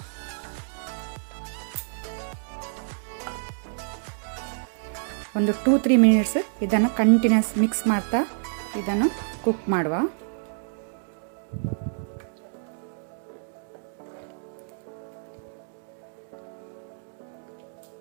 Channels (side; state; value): left; silent; digital silence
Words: ಒಂದು 2-3 ಮಿನಿಟ್ಸ್ ಇದನ್ನು ಕಂಟಿನ್ಯೂಸ್ ಮಿಕ್ಸ್ ಮಾಡ್ತಾ ಇದನ್ನು ಕುಕ್ ಮಾಡುವ.